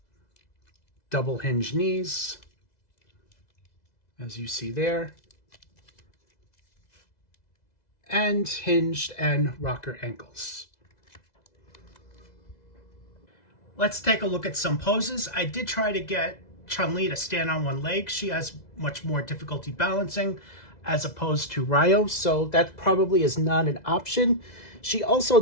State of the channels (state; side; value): late; right; 2.0 ms